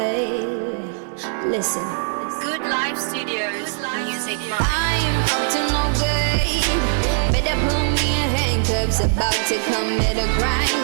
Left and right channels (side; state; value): left; silent; digital silence